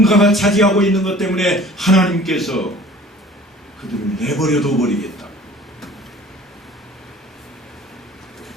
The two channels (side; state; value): both; normal; correlation 0.47